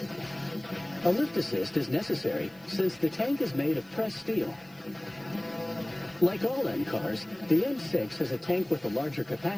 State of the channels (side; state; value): right; noise; hiss, 28 dB below the sound